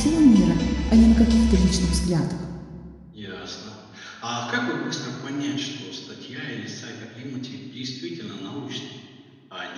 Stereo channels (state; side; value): identical; both; correlation 1.00